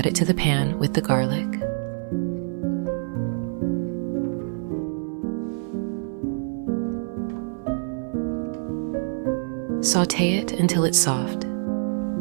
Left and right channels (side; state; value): left; silent; 61 dB below the other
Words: Add it to the pan with the garlic. Sauté it until it's soft.